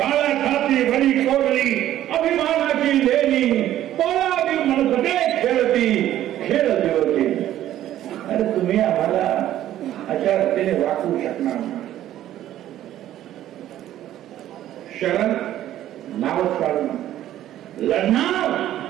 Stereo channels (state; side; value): quieter; left; 12.7 dB